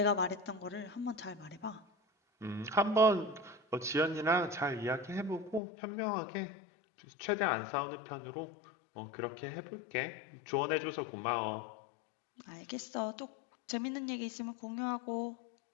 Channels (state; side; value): drops out; right; at 5.6 s